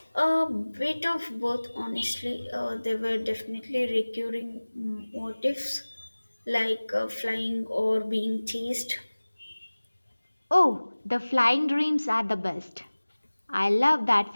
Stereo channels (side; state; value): both; inverted; correlation -1.00